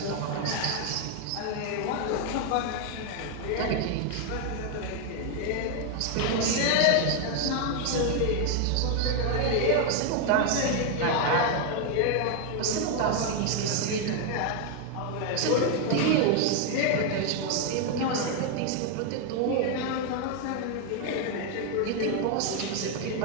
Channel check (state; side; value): different; both; correlation 0.01